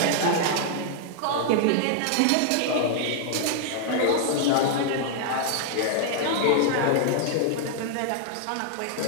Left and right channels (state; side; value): different; both; correlation -0.01